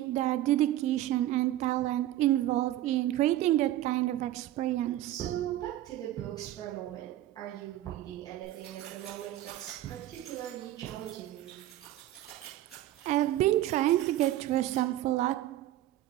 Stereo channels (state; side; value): quieter; left; 14.1 dB